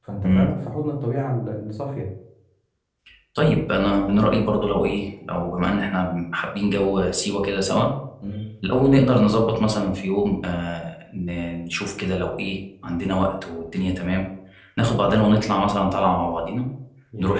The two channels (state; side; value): identical; both; correlation 1.00